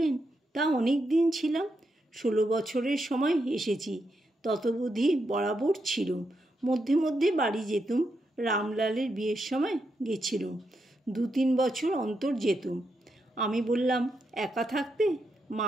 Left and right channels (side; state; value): both; normal; correlation 0.83